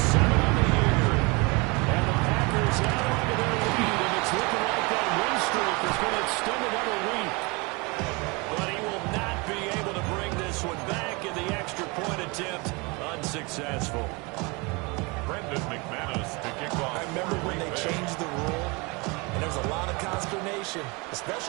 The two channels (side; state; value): left; quieter; 27.7 dB